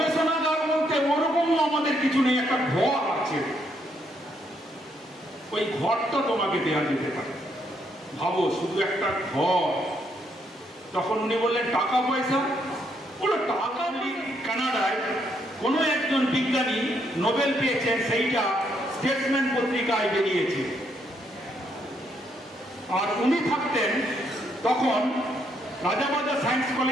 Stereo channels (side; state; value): both; normal; correlation 0.74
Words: বলতে ওরকমও আমাদের কিছু নেই, একটা ঘর আছে, ওই ঘরটা তোমাকে দেওয়া যেতে পারে। ভাবো শুধু একটা ঘর। তখন উনি বললেন টাকা পয়সা, বলে টাকা কানাডায় কোনো একজন বিজ্ঞানী নোবেল পেয়েছেন, সেইটা স্টেটসম্যান পত্রিকায় বেরিয়েছে। আর উনি থাকতেন তখন রাজাবাজার সায়েন্স